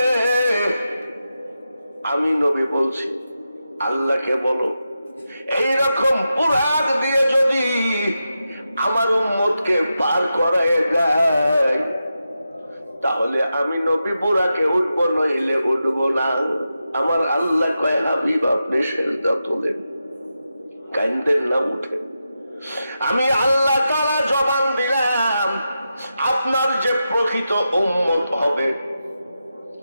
আমি নবী বলছি, আল্লাহকে বলো, এইরকম বুরাক দিয়ে যদি আমার উম্মতকে পার করায় দেয়, তাহলে আমি নবী বুরাকে উঠবো, নইলে উঠবো না। আমার আল্লাহ কয়, হাবিব আপনি সেজদা তোলেন, কান্দেন না, উঠেন। আমি আল্লাহ তাআলা জবান দিলাম, আপনার যে প্রকৃত উম্মত হবে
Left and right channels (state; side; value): inverted; both; correlation -0.89